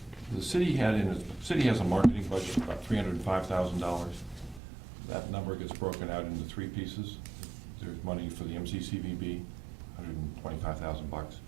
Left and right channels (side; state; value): left; drops out; at 4.6 s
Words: The city has a marketing budget of about $305,000. That number gets broken out into three pieces. There's money for the MCCVB, $125,000.